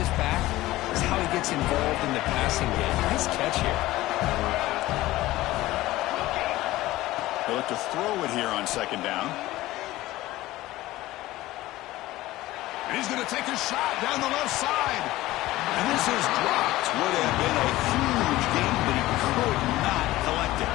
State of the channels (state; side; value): quieter; right; 17.1 dB